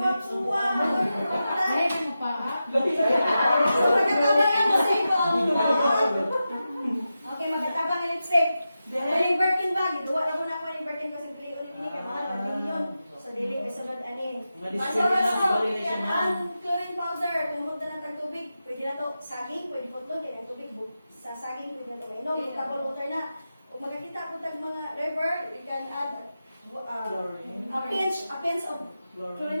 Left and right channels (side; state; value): both; inverted; correlation -0.91